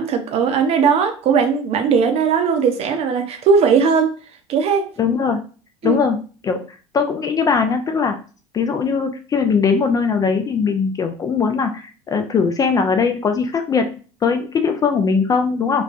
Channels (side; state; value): both; normal; correlation 0.43